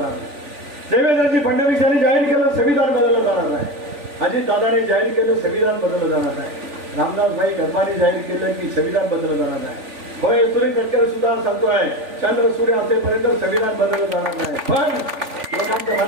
नाही. देवेंद्रजी फडणवीस यांनी जाहीर केलं संविधान बदललं जाणार नाही. अजित दादाने जाहीर केलं संविधान बदललं जाणार नाही. रामदास भाई गरमानी जाहीर केलं की संविधान बदललं जाणार नाही. होय सुनील तटकरे सुद्धा सांगतोय चंद्र सूर्य असेपर्यंत संविधान बदललं जाणार नाही. पण लोकांच्या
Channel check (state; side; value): late; left; 3.4 ms